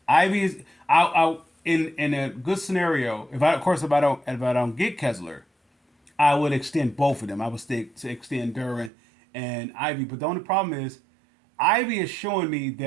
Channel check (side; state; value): left; drops out; at 8.9 s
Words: Ivy is in a good scenario. If I don't get Kessler, I would extend both of them. I would extend Duren and Ivy. But the only problem is, Ivy is showing me